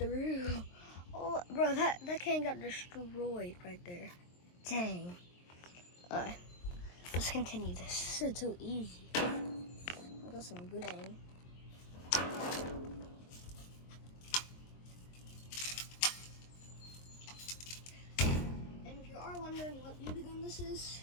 Oh, bro, that can got destroyed right there. Dang. Alright, let's continue this. This is too easy. I got some good aim. And if you are wondering what BB gun this is,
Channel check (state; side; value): late; right; 23 ms